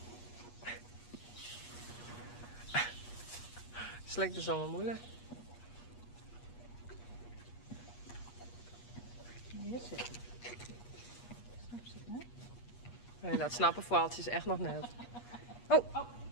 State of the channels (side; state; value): right; late; 8.4 ms